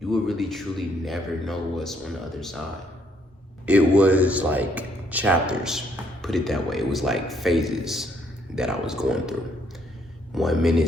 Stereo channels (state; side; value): normal; both; correlation 0.69